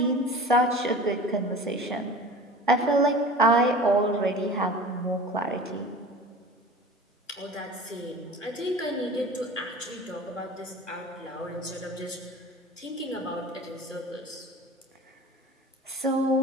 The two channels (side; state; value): both; normal; correlation 0.39